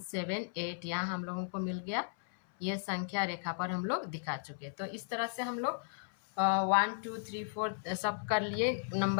यहाँ हम लोगों को मिल गया, ये संख्या रेखा पर हम लोग दिखा चुके। तो इस तरह से हम लोग 1 2 3 4 सब कर लिए।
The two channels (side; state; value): right; silent; 54 dB below the other